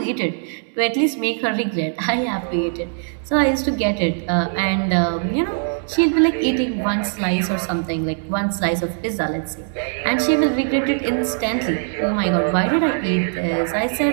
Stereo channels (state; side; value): silent; left; digital silence